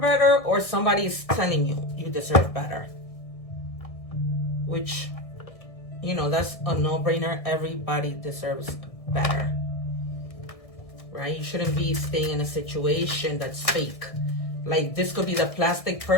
better, or somebody is telling you you deserve better. Which, you know, that's a no-brainer. Everybody deserves better, right? You shouldn't be staying in a situation that's fake. Like, this could be the plastic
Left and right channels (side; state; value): right; late; 1.6 ms